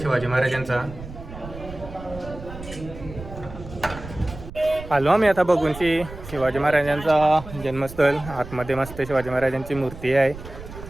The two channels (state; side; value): noise; right; rumble, 13 dB below the sound